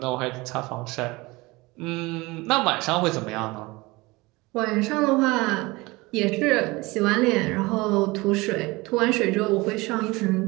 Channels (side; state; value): left; quieter; 22.7 dB